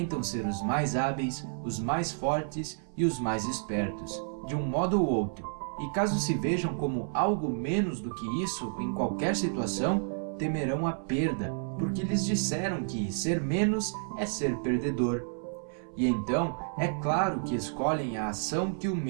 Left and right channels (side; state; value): left; silent; 57 dB below the other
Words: ser os mais hábeis, os mais fortes e os mais espertos, de um modo ou outro. E caso se vejam como algo menos do que isso em qualquer situação, temerão a perda, porque lhes disseram que ser menos é ser perdedor. E então, é claro que escolhem a ação que o